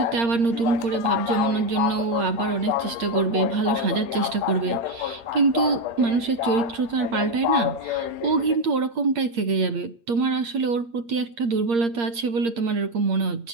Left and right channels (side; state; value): left; late; 8.6 ms